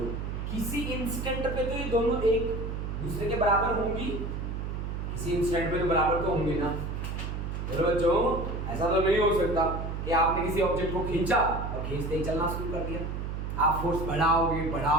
किसी इंस्टेंट पे तो ये दोनों एक दूसरे के बराबर होंगी, किसी इंस्टेंट पे तो बराबर तो होंगे ना। बच्चों ऐसा तो नहीं हो सकता कि आपने किसी ऑब्जेक्ट को खींचा और खींचते ही चलना शुरू कर दिया, आप फोर्स बढ़ाओगे,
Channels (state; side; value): noise; right; hum, 4 dB below the sound